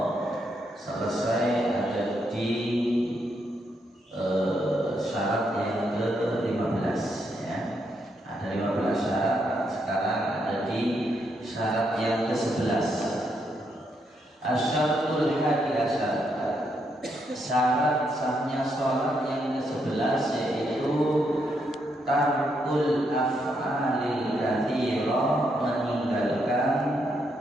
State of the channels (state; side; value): normal; both; correlation 0.78